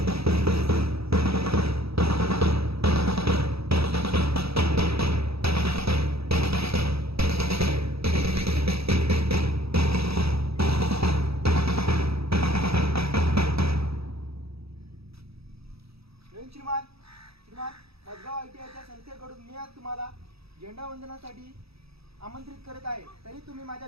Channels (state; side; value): late; left; 0.77 ms